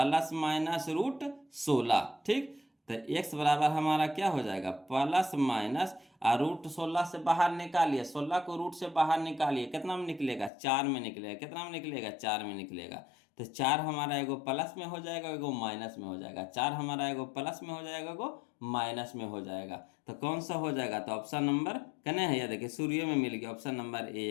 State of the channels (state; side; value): drops out; right; at 10.5 s